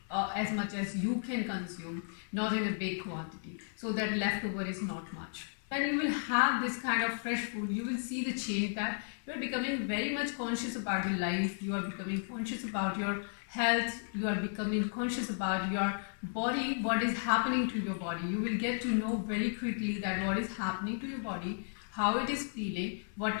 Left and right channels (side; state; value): right; silent; 55 dB below the other